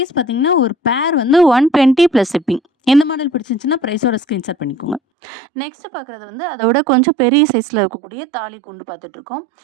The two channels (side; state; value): left; drops out; at 5.0 s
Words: பார்த்தீங்கன்னா ஒரு பேர் வந்து 120 ப்ளஸ் ஷிப்பிங். இந்த மாடல் பிடிச்சிருந்துச்சுன்னா ப்ரைஸோட ஸ்க்ரீன்ஷாட் பண்ணிக்கோங்க. நெக்ஸ்ட்டு பார்க்குறது வந்து அதோட கொஞ்சம் பெரிய சைஸில் இருக்கக்கூடிய தாலி குண்டு பார்த்துட்ருக்கோம்.